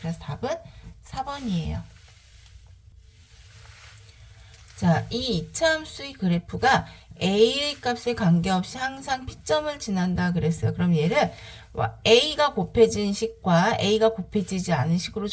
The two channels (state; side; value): identical; both; correlation 1.00